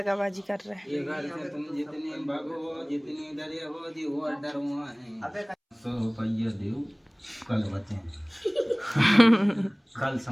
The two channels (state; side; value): identical; both; correlation 1.00